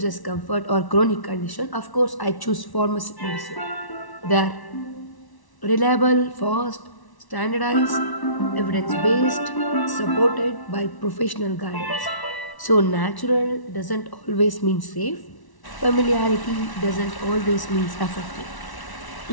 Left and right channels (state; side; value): late; right; 1.1 ms